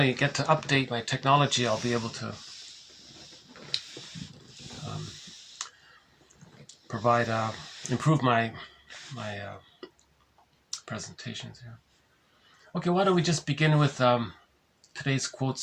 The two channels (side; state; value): both; identical; correlation 1.00